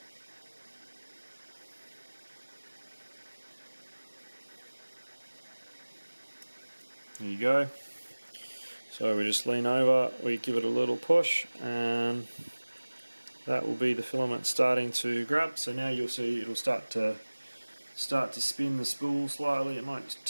There you go. So we just lean over, we give it a little push, and that will be the filament starting to grab. So now you'll see it'll start to spin the spool slightly. It might just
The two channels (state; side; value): inverted; both; correlation -1.00